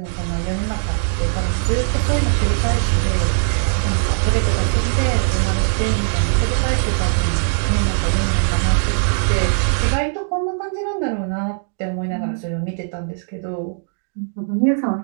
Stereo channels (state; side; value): silent; left; digital silence